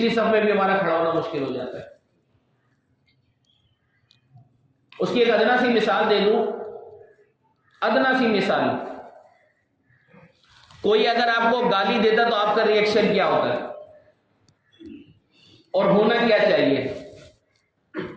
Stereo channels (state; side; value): identical; both; correlation 1.00